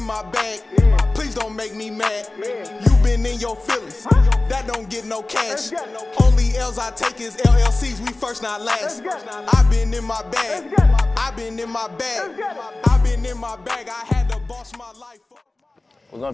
my bag. Please don't make me mad. You been in your feelings. That don't get no cash. Only L's I take is LLCs. We first, not last. I've been in my bag. I've been in my bag. I've been in my bag. I had to boss my life up. We're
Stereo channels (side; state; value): right; quieter; 3.0 dB